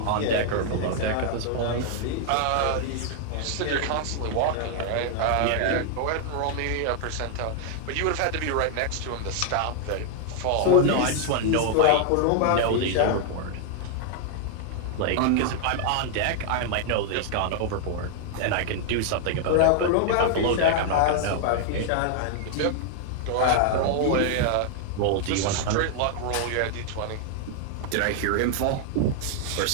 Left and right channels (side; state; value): both; different; correlation 0.00